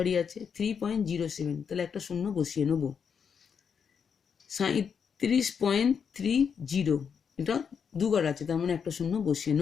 আছে, 3.07 তাহলে একটা শূন্য বসিয়ে নেব। 37.30 এটা 2 ঘর আছে, তার মানে একটা শূন্য বসিয়ে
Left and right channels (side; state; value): right; quieter; 6.8 dB